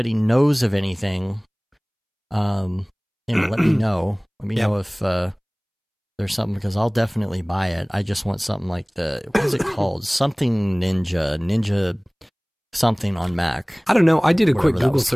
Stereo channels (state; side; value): identical; both; correlation 1.00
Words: knows of anything, you know, let me know. Let me know if there's something, because I'll definitely buy it. I just want something like what is it called? Something Ninja something on Mac. I don't know. I did a quick Google